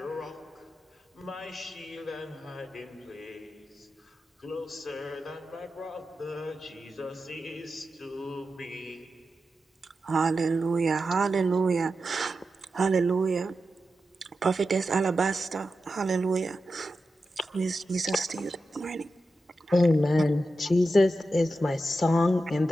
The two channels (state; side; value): normal; both; correlation 0.90